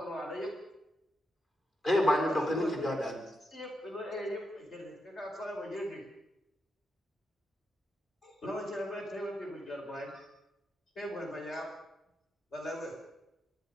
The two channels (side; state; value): both; normal; correlation 0.84